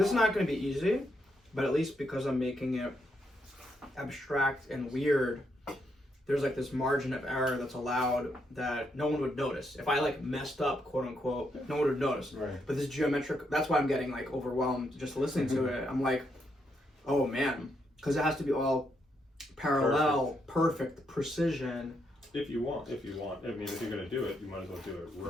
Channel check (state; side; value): normal; both; correlation 0.78